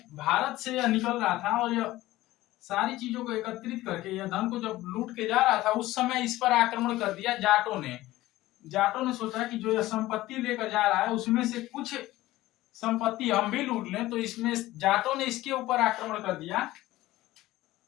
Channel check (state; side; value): quieter; right; 16.9 dB